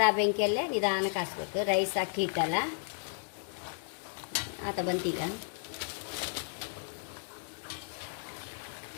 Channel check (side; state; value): right; silent; digital silence